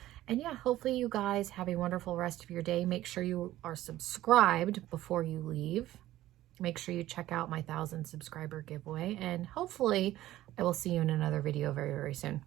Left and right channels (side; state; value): left; quieter; 14.8 dB